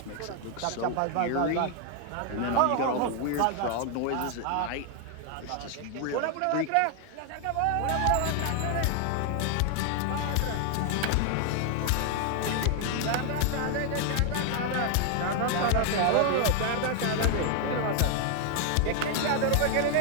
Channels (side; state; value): both; different; correlation 0.00